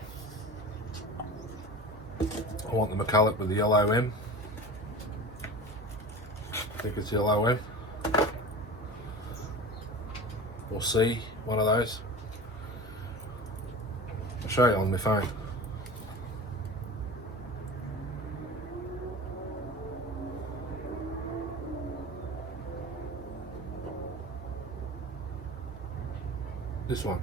I want the McCulloch with the yellow M. I think it's yellow M. Or C, one of those. I'll show you on my phone. This one.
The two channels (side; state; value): both; normal; correlation 0.34